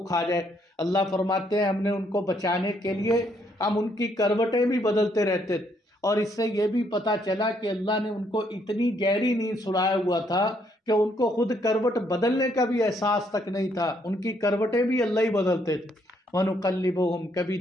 کھا جائے۔ اللہ فرماتے ہیں ہم نے ان کو بچانے کے لیے ہم ان کی کروٹیں بھی بدلتے رہتے تھے، اور اس سے یہ بھی پتہ چلا کہ اللہ نے ان کو اتنی گہری نیند سلایا ہوا تھا کہ ان کو خود کروٹ بدلنے کا بھی احساس تک نہیں تھا، ان کی کروٹیں بھی اللہ ہی بدلتے تھے۔ وَنُقَلِّبُهُمْ، کبھی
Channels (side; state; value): both; normal; correlation 0.71